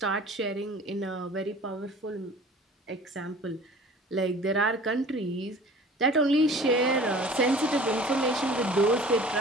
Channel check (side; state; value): both; normal; correlation 0.45